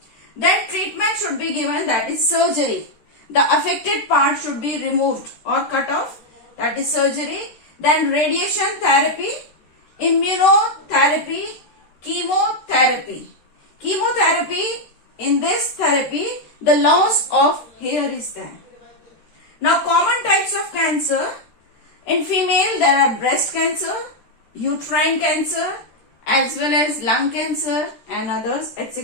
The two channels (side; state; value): right; late; 13 ms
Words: Then treatment should be given, that is surgery. The affected part should be removed or cut off, that is surgery. Then radiation therapy, immunotherapy, chemotherapy. Chemotherapy, in this therapy, the loss of hair is there. Now common types of cancer. In female, there are breast cancer, uterine cancer, as well as lung cancer and others,